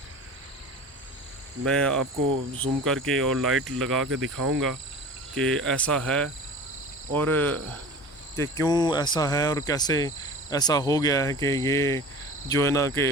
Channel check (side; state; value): both; normal; correlation 0.37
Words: मैं आपको जूम करके और लाइट लगा के दिखाऊंगा कि ऐसा है और कि क्यों ऐसा है और कैसे ऐसा हो गया है कि ये जो है ना